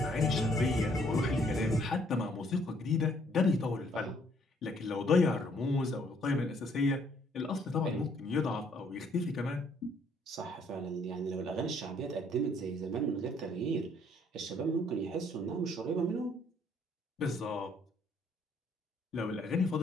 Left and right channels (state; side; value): normal; both; correlation 0.65